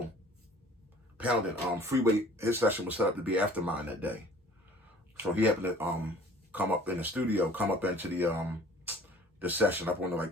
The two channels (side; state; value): both; normal; correlation 0.50